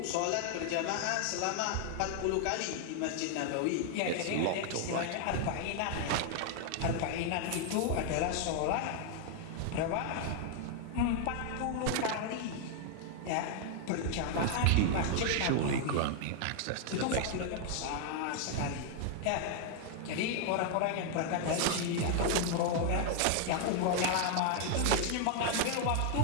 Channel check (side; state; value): both; different; correlation 0.00